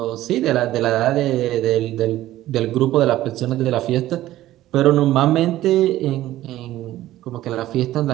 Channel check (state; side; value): quieter; left; 14.8 dB